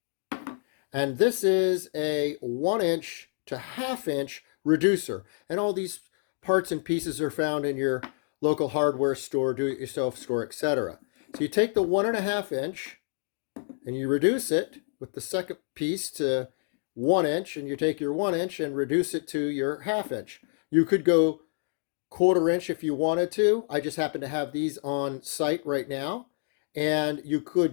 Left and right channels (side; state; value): right; silent; 59 dB below the other